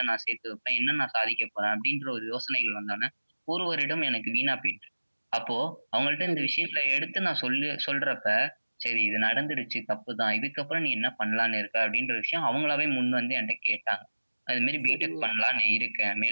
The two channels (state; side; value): inverted; both; correlation -1.00